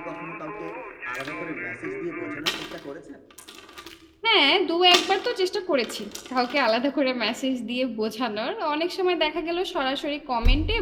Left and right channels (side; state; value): both; identical; correlation 1.00